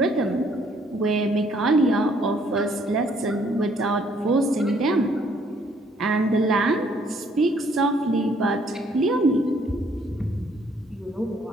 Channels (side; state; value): both; normal; correlation 0.65